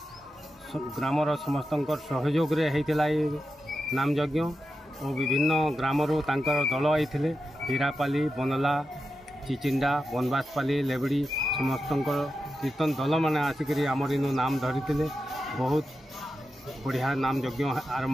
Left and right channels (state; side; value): normal; both; correlation 0.90